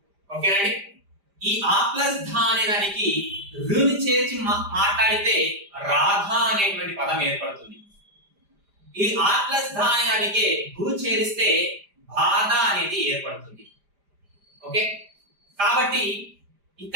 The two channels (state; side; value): late; left; 5.0 ms